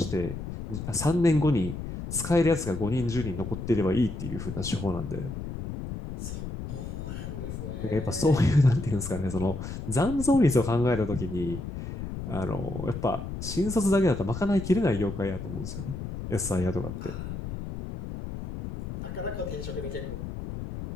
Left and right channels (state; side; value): noise; left; rumble, 7 dB below the sound